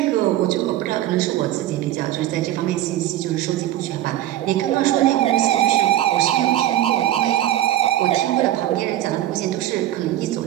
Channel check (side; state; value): left; quieter; 13.5 dB